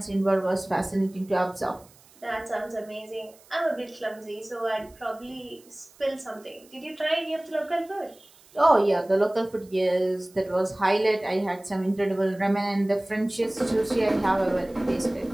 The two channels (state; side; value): noise; right; hiss, 27 dB below the sound